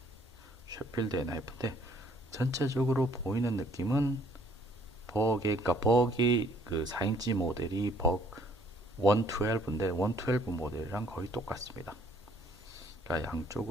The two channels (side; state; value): both; normal; correlation 0.62